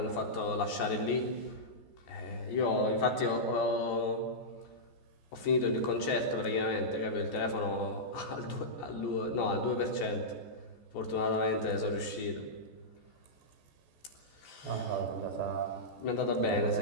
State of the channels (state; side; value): late; right; 14 ms